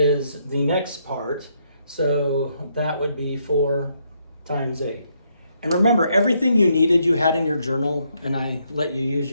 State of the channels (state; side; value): inverted; both; correlation -0.75